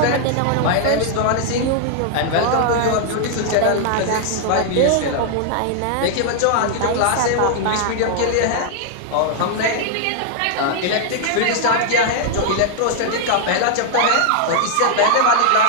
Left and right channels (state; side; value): different; both; correlation -0.01